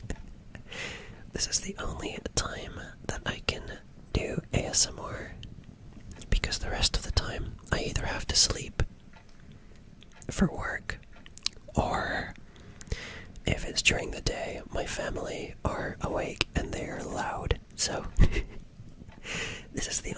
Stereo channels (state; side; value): identical; both; correlation 1.00